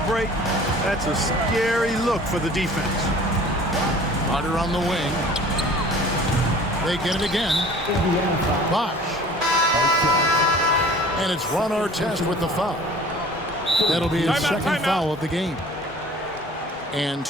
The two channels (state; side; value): normal; both; correlation 0.47